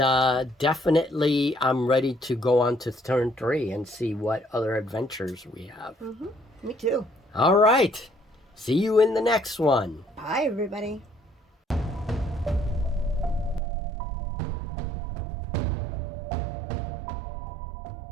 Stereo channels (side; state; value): left; drops out; at 13.6 s